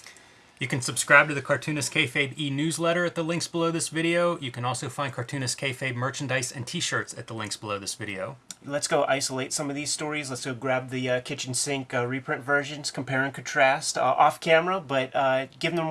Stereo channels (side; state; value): both; identical; correlation 1.00